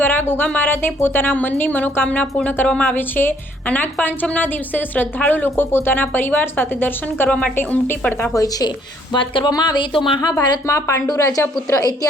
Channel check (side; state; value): both; normal; correlation 0.64